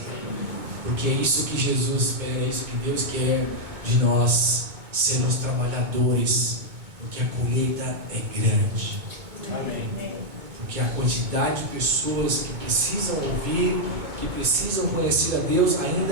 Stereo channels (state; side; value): late; left; 2.2 ms